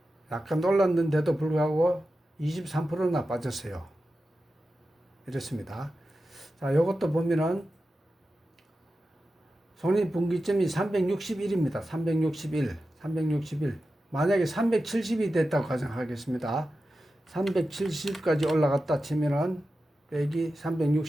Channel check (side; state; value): both; normal; correlation 0.92